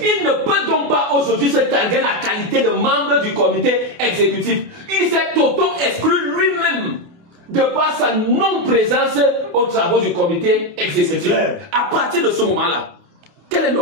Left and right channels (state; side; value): late; left; 28 ms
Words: Il ne peut donc pas aujourd'hui se targuer la qualité de membre du comité exécutif. Il s'est auto-exclu lui-même de par sa non-présence aux travaux du comité exécutif. À partir de ce moment-là, quel est